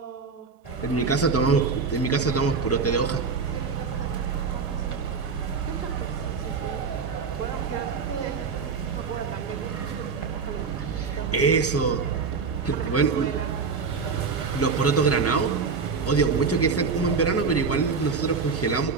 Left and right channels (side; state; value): left; quieter; 5.1 dB